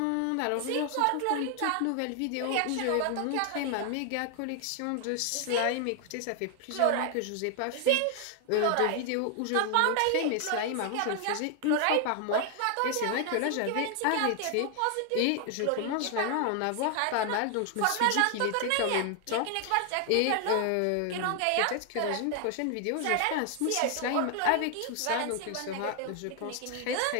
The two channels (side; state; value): both; different; correlation 0.00